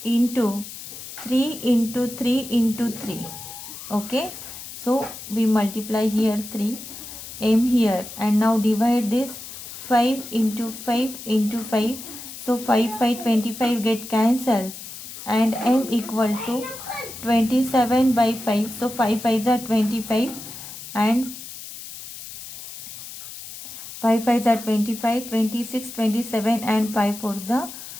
into 3 into 3 into 3. Okay, so we multiply here 3 m here and now divide this 5 into 5 into 5. So 5 25 get cancelled and m equal to 27 by 5. So 5 5s are 25 and 5 5s are 25, 26, 27 and 5 4s are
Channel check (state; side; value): noise; left; hiss, 12 dB below the sound